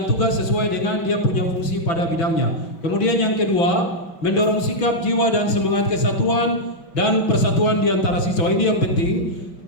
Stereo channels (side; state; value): right; late; 5.6 ms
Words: tugas sesuai dengan dia punya fungsi pada bidangnya. Kemudian yang kedua, mendorong sikap, jiwa dan semangat kesatuan dan persatuan di antara siswa. Ini yang penting.